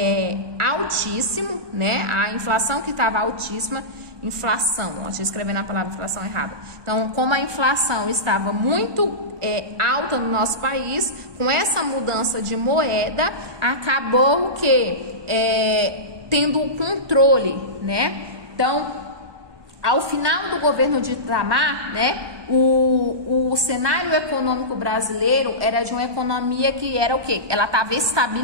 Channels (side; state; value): left; late; 1.2 ms